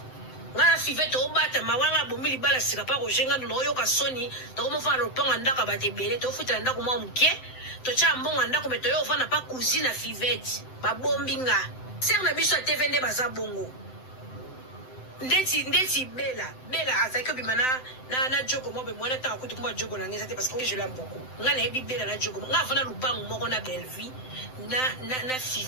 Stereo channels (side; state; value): right; late; 7.8 ms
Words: ngala five to bata mawanga bomili bala sika pa rojenga no yo ka soni to ko mo fana lupango ndaka batebele to futa ndako mo mke to cha mbongo ndako meto yo fana pa cousine Fivette ba bombinga ser na biso TV nde baza bongo ndeti bela azaki bimana na jogo mo be mwana ta kutu kumba jogo na ngeza te parce que je l'aime beaucoup ngana ebi bela na jogo nga fana lupango moko na Belleville na